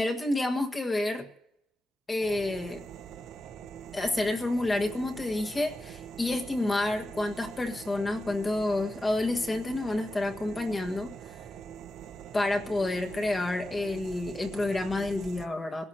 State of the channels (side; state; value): both; normal; correlation 0.91